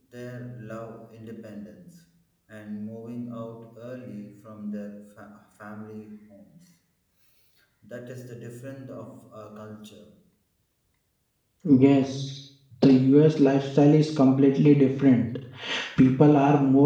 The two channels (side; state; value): both; identical; correlation 1.00